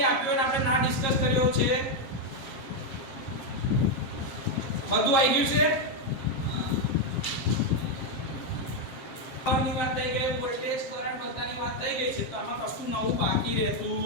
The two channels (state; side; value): late; right; 7.5 ms